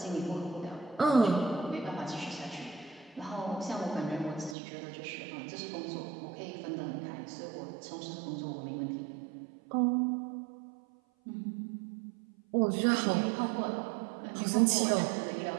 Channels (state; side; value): drops out; left; at 4.5 s